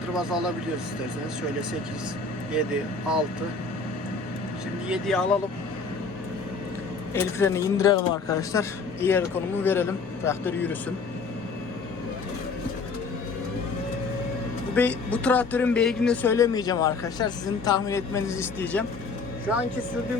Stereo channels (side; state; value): right; quieter; 4.3 dB